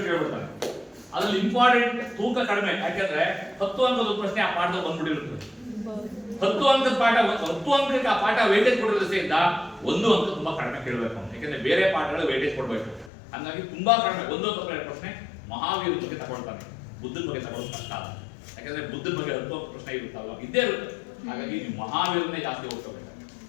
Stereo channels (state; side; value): drops out; right; at 13.1 s